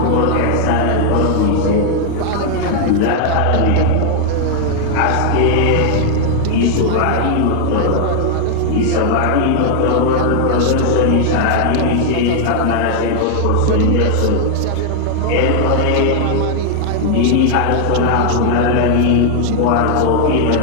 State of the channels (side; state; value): both; different; correlation 0.00